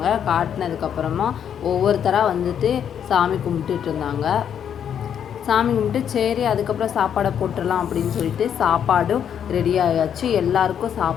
காட்டினதுக்கப்புறமா ஒவ்வொருத்தராக சாமி கும்பிட்டுட்டு இருந்தாங்க. சாமி கும்பிட்டு சரி அதுக்கப்புறம் சாப்பாடை போட்டுடலாம் அப்படின்னு சொல்லிட்டு சாப்பாடும் ரெடி ஆயாச்சு. எல்லாருக்கும்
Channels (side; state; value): right; quieter; 8.7 dB